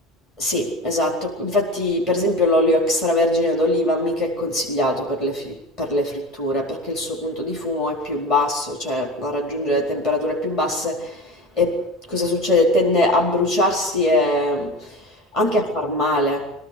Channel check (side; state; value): both; normal; correlation 0.31